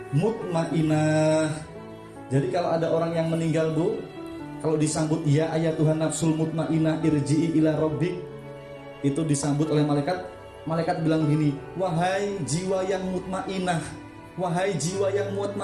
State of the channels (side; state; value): both; identical; correlation 1.00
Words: mutmainah. Jadi kalau ada orang yang meninggal, Bu, kalau disambut ya ayyatuhan nafsul mutmainah irji'i ila rabbik, itu disambut oleh malaikat. Malaikat bilang gini, wahai jiwa yang mutmainah, wahai jiwa yang